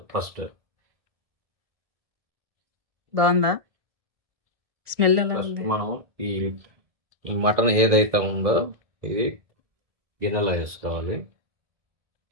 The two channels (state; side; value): late; left; 1.7 ms